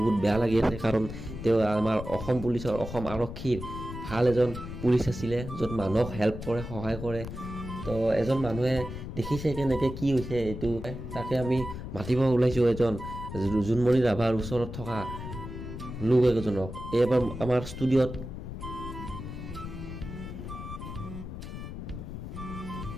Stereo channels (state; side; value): noise; left; rumble, 9 dB below the sound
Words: বেয়া লাগি আছে কাৰণ তেওঁ আমাৰ অসম পুলিচৰ অসম আৰক্ষীৰ ভাল এজন পুলিচ আছিলে য'ত মানুহক হেল্প কৰে সহায় কৰে তো এজন মানুহে দেখিছে কেনেকৈ কি হৈছে এইটো তাকে আমি মাতিব ওলাইছোঁ এজন জুনমণি ৰাভাৰ ওচৰত থকা লোক এজনক এইবাৰ আমাৰ ষ্টুডিঅ'ত